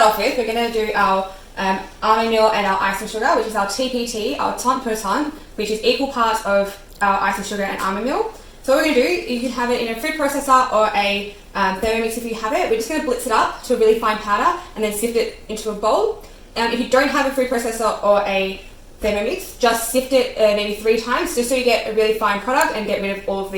off with, we're going to do our almond meal and our icing sugar, which is our TPT, our tant per tant, which is equal parts of our icing sugar and almond meal. So what we're going to do, you can have it in a food processor or a Thermomix if you have it. We're just going to blitz it up to a really fine powder and then sift it into a bowl. If you don't have a food processor or a Thermomix, just sift it maybe 3 times just so you get a really fine product and get rid of all of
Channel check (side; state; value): both; identical; correlation 1.00